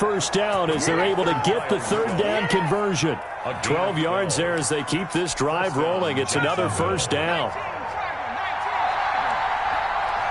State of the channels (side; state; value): both; identical; correlation 1.00